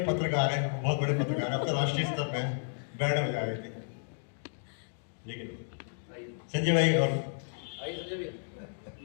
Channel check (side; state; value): right; silent; digital silence